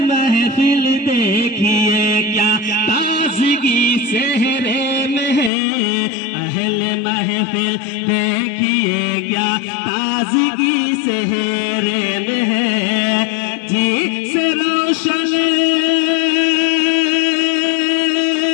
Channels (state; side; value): drops out; right; at 5.5 s